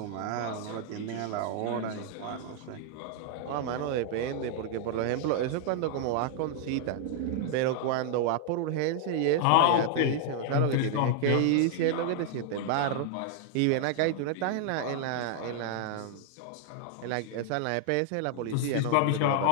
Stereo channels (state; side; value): different; both; correlation -0.01